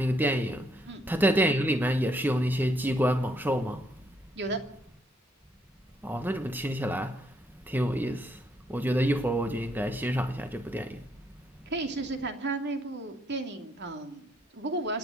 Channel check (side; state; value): both; normal; correlation 0.72